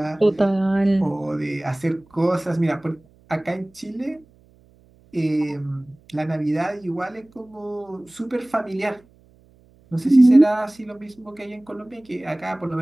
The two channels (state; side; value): noise; right; hum, 30 dB below the sound